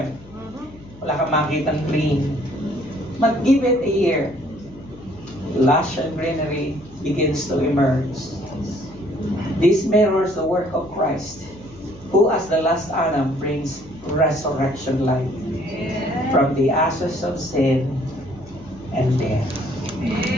Wala kang makitang green. But give it a year, lush and greenery begins to emerge. This mirrors the work of Christ, who as the last Adam brings resurrection life from the ashes of sin and death.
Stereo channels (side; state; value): left; noise; hum, 22 dB below the sound